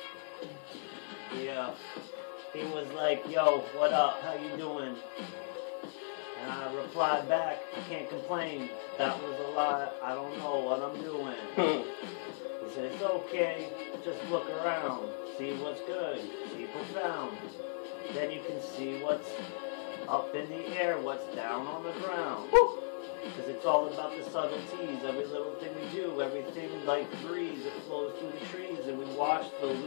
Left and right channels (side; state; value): right; silent; 54 dB below the other